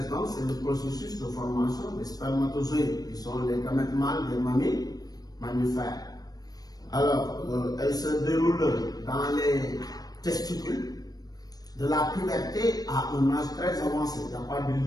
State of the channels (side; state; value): right; late; 0.19 ms